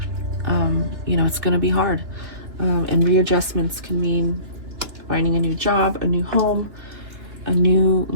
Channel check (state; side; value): late; left; 2.7 ms